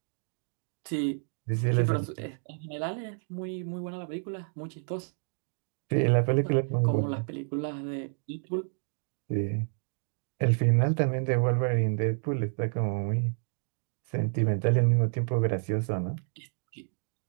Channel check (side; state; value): left; silent; 58 dB below the other